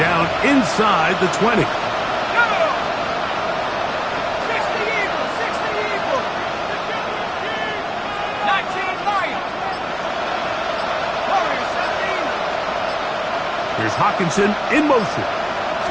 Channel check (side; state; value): both; identical; correlation 1.00